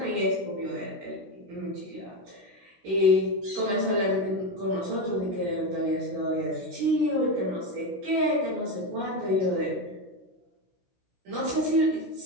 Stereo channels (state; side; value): late; left; 16 ms